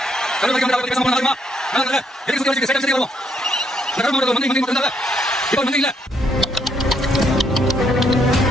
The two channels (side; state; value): both; normal; correlation 0.72